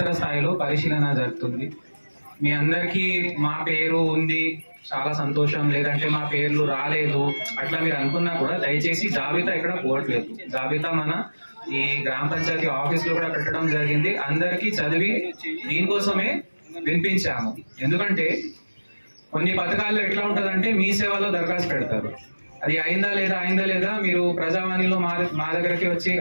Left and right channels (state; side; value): inverted; both; correlation -1.00